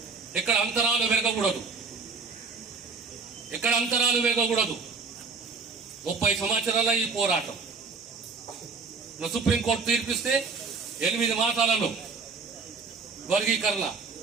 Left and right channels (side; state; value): left; quieter; 4.6 dB